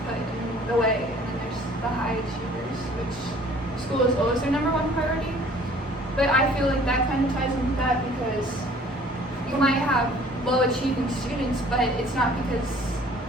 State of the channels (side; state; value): both; normal; correlation 0.53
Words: put in the way, and then there's the high achievers, which school is always their number one priority. But I feel like that kind of ties into that, because you might have low achieving students, but it's not because